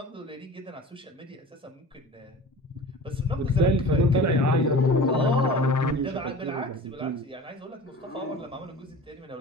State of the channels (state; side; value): normal; both; correlation 0.39